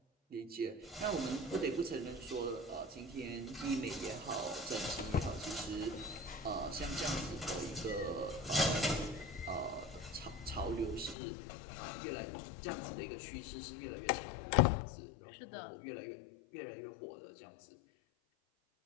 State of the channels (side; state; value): right; drops out; at 11.2 s